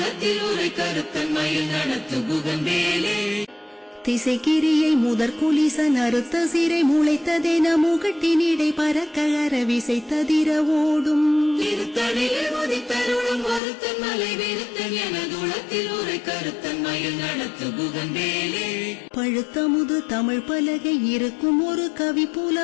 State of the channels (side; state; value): right; drops out; at 13.6 s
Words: உரை கருத்தன் மயில் நடத்து புகந்தேலே திசைக்கிரியை முதற் குலிசன் அறுத்த சிறை முளைத்ததென முகட்டினிடை பறக்க அரவிசை ததிர ஓடும் திருத்தணிலே உதித்தருளும் ஒருத்தன் மலை விருத்தன் எனதுளத்தில் உரை கருத்தன் மயில் நடத்து புகந்தேலே பழுத்த முது தமிழ் பலகை இருக்கும் ஒரு கவி